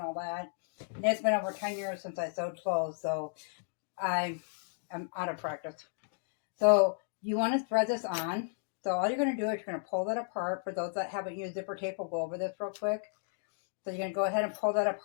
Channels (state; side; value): silent; right; digital silence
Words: that. And it's been over 10 years since I sewed clothes, so I am out of practice. So you want to thread this on. So all you're going to do is you're going to pull that apart. For those that haven't used zipper tape, we'll go over this real quick. So you're going to go ahead and pull that